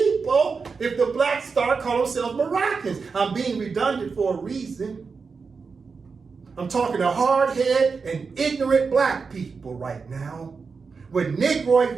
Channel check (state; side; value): quieter; left; 5.0 dB